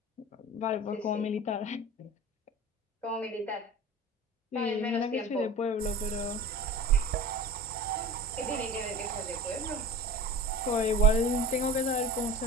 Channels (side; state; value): both; normal; correlation 0.35